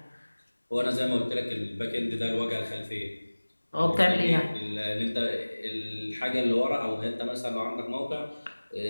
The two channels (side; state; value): both; inverted; correlation -1.00